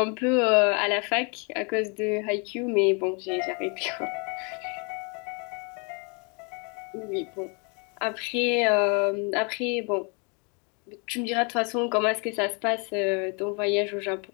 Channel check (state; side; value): quieter; right; 34.4 dB